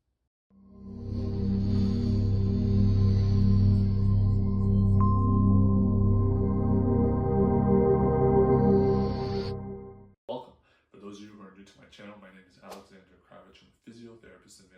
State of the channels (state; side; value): identical; both; correlation 1.00